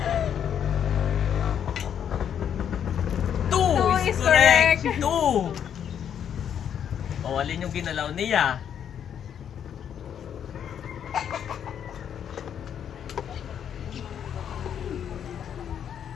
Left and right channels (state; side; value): quieter; right; 8.8 dB